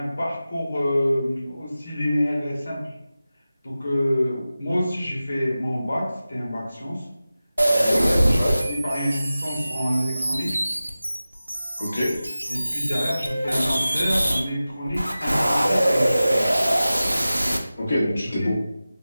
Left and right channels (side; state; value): both; inverted; correlation -0.96